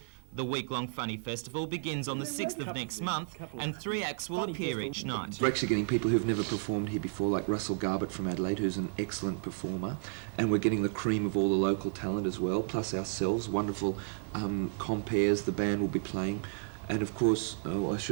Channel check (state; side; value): silent; left; digital silence